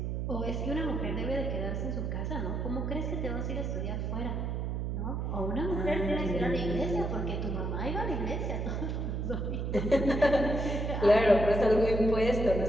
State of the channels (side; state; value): right; noise; hum, 2 dB below the sound